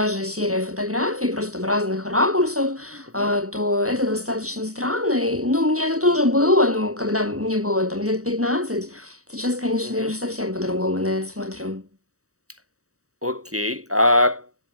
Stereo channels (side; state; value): left; late; 0.65 ms